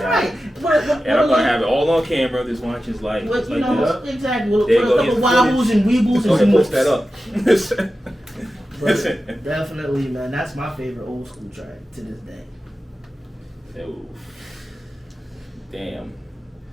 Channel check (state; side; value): normal; both; correlation 0.93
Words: right. And I'm gonna have it all on camera. This watch is like, What, it's you like know, this. exactly. We'll There put you a go, couple here's wobbles and weebles Go ahead, and post zooms. that up. But definitely, man, that's my favorite old school track to this day. Oof. Damn.